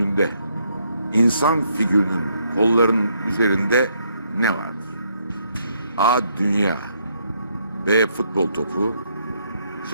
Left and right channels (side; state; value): both; inverted; correlation -0.73